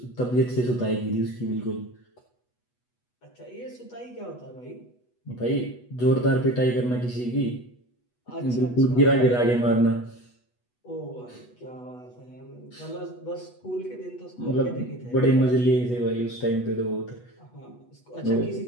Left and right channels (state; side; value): late; right; 8.2 ms